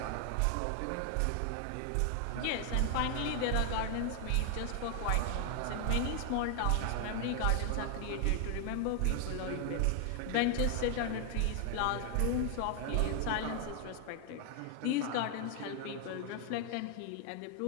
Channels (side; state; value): both; different; correlation 0.00